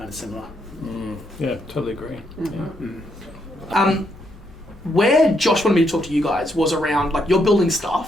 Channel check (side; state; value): both; normal; correlation 0.76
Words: of similar. Yeah, totally agree. Mm-hmm. Yeah. Where Josh wanted me to talk to you guys was around, like, you're building